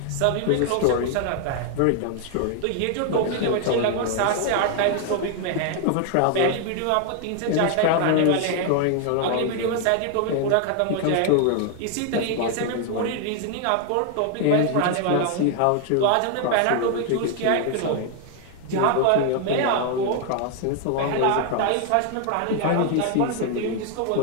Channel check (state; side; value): different; both; correlation 0.00